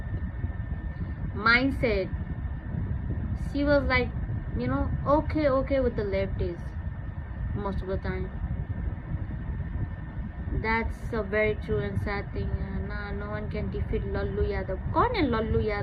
mindset, she was like okay with the leftists most of the time. That's a very true and sad thing. No one can defeat Lallu Yadav. कौन है लल्लू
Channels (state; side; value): identical; both; correlation 1.00